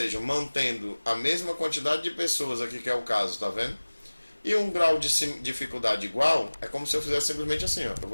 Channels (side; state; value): both; inverted; correlation -1.00